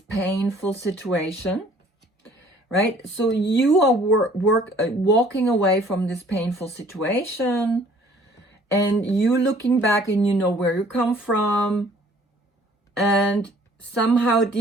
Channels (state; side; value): normal; both; correlation 0.56